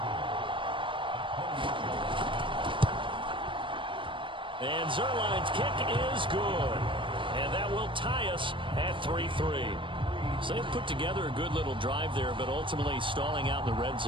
And Zerline's kick is good. And that will tie us at 3-3. So they've put together a good little drive there, but ultimately stalling out in the red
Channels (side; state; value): left; late; 0.24 ms